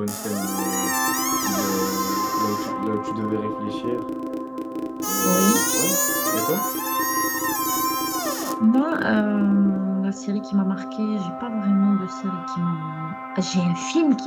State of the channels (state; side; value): identical; both; correlation 1.00